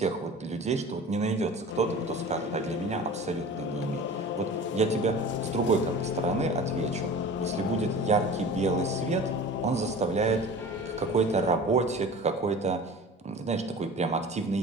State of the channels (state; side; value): normal; both; correlation 0.38